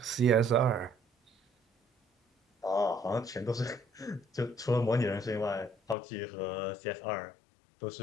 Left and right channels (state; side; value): drops out; right; at 6.0 s